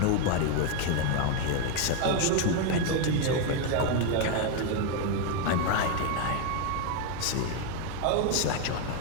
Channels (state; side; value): different; both; correlation 0.01